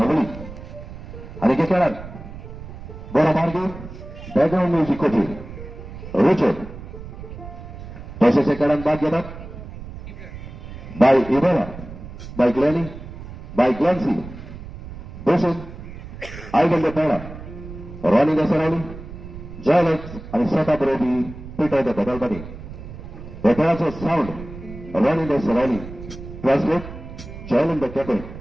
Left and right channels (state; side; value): noise; right; rumble, 13 dB below the sound